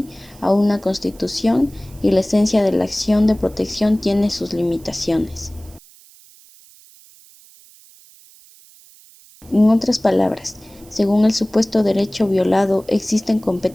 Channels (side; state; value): right; noise; hiss, 25 dB below the sound